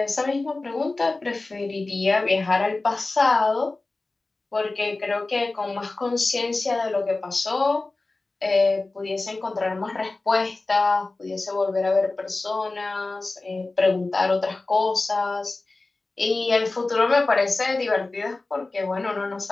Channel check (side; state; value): right; quieter; 3.3 dB